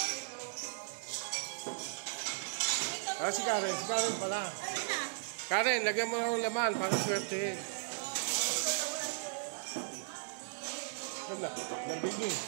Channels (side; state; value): left; silent; digital silence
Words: Si Karen pala. Karen, lagyan mo ng laman para swertehin. Wala, nabigay.